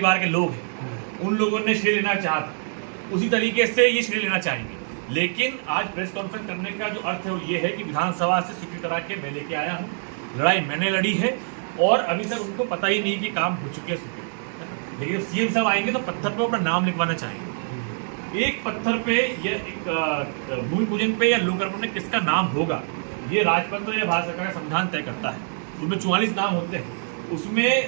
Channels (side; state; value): left; silent; 62 dB below the other